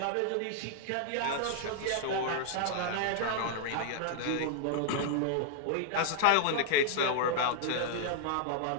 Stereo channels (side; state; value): both; different; correlation -0.01